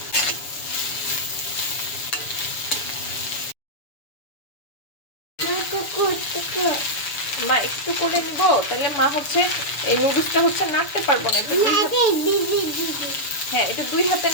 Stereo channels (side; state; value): right; late; 6.9 ms